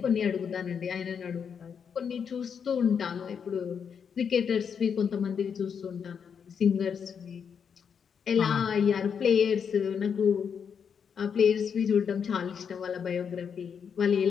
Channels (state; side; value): quieter; right; 7.0 dB